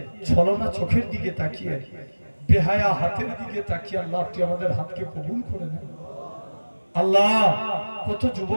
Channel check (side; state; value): both; inverted; correlation -1.00